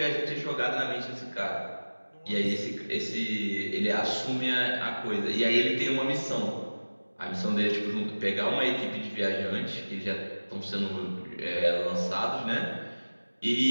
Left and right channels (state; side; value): inverted; both; correlation -1.00